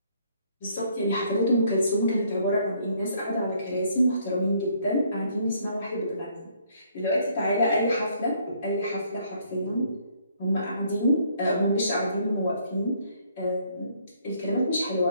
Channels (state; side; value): inverted; both; correlation -0.66